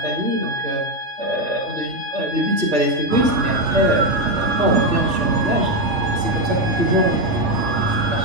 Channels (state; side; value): late; left; 3.4 ms